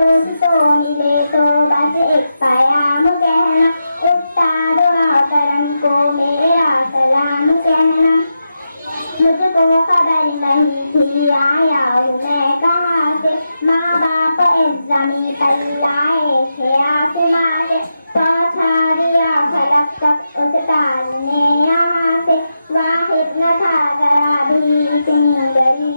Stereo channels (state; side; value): inverted; both; correlation -0.88